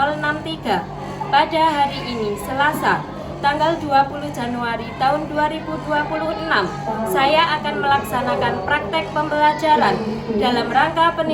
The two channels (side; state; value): both; identical; correlation 1.00